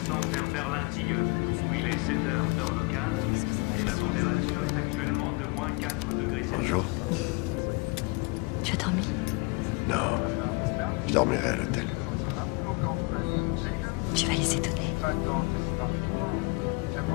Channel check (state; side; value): quieter; right; 28.4 dB